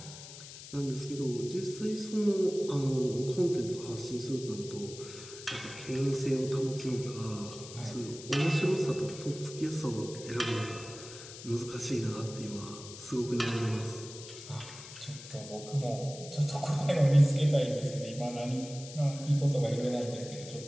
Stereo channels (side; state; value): left; noise; hiss, 14 dB below the sound